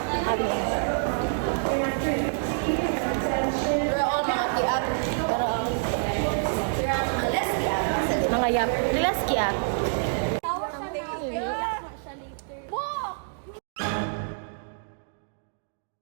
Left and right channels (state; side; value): silent; left; digital silence